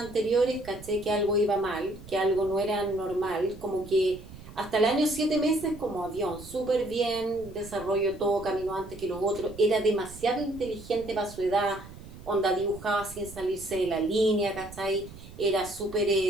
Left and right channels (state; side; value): noise; right; rumble, 16 dB below the sound